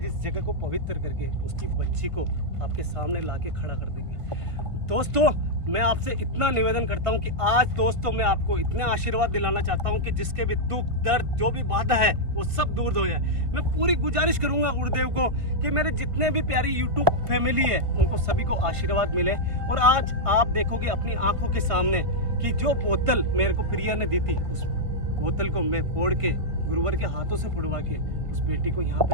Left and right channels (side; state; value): left; late; 1.3 ms